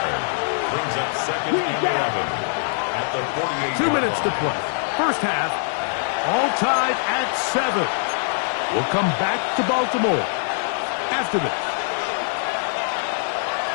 Brings up 2nd and 11 at the 48. 2 minutes to play. 1st half, all tied at 7. We'll come back to Baltimore after this.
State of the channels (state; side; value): silent; right; digital silence